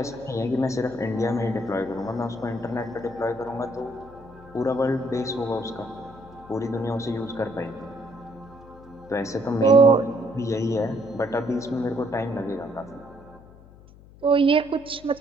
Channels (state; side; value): noise; left; hum, 22 dB below the sound